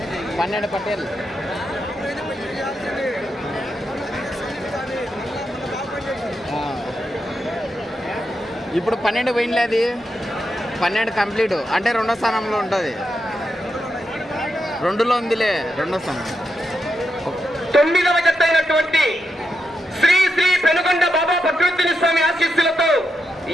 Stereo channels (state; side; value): normal; both; correlation 0.85